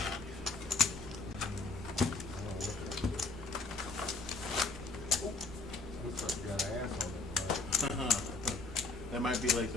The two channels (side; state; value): right; quieter; 3.6 dB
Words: Looks like you got an ass on it. That might be like